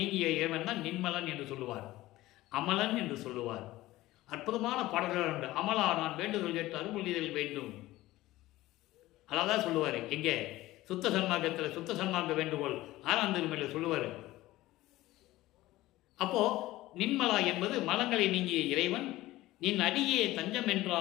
இறைவன் தான் நின்மலன் என்று சொல்லுவார், அமலன் என்று சொல்லுவார். அற்புதமான பாடல்கள் உண்டு. அமலா நான் வேண்டுதல் கேட்டு அருள்மொழிதல் வேண்டும், அதான் சொல்லுவார். எங்கே? சுத்த சன்மார்க்கத்தில் சுத்த சன்மார்க்க வேண்டுகோள் 6ஆம் திருமுறையில் சொல்லுவார். அப்போ நின்மலா என்பது மலங்களை நீங்கிய இறைவன். நின் அடியே தஞ்சம்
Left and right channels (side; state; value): right; quieter; 17.1 dB